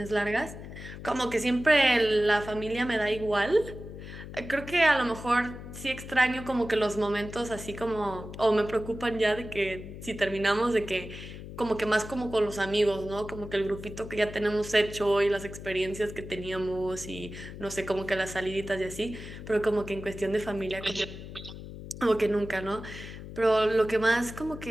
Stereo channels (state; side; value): noise; left; hum, 12 dB below the sound